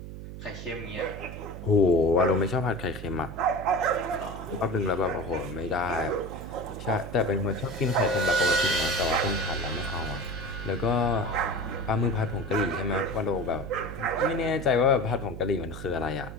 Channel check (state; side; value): noise; right; hum, 11 dB below the sound